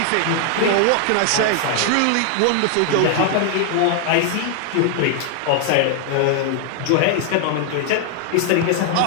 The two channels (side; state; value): both; different; correlation 0.00